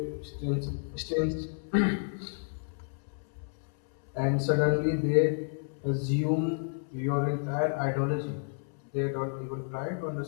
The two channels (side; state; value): right; silent; 57 dB below the other